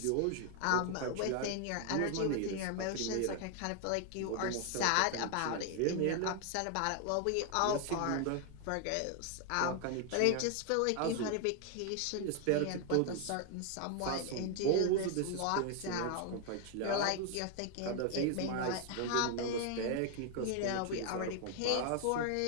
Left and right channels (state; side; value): different; both; correlation 0.00